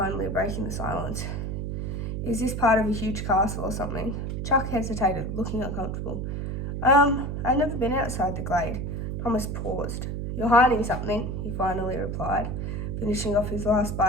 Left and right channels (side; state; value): right; noise; hum, 3 dB below the sound